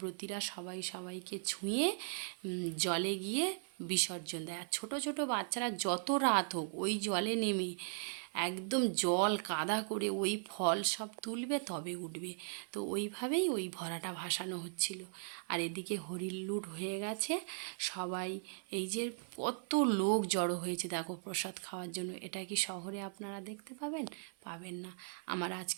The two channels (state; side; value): silent; left; 52 dB below the other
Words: সবাই সবাইকে ছুঁয়ে জলে গিয়ে বিসর্জন দেয়। আর ছোটো ছোটো বাচ্চারা যত রাত হোক ওই জলে নেমে একদম জল কাদা করে ওই ফল সব তুলবে তবে উঠবে। তো ওইভাবেই ওই ভরাটা ভাসানো হচ্ছিল। আর এদিকে হরিল্লুট হয়ে গেছে, সবাই এই যে কত লোক জড়ো হয়েছে দেখো প্রসাদ খাওয়ার জন্য, এটা কি শহরে আপনারা দেখতে পাবেন? পাবেন না। আমার